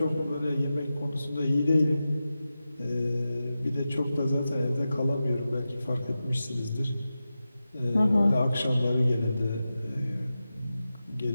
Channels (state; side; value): inverted; both; correlation -0.93